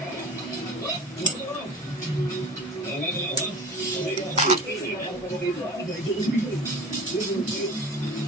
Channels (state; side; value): normal; both; correlation 0.37